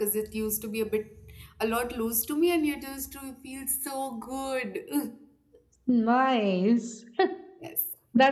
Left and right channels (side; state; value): both; identical; correlation 1.00